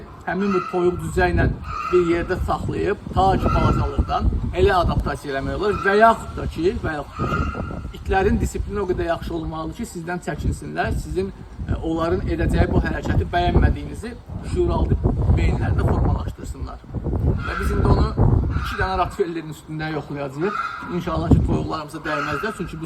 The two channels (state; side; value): identical; both; correlation 1.00